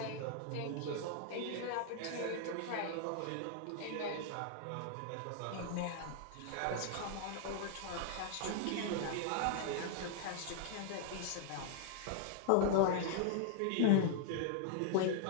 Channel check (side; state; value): both; different; correlation -0.01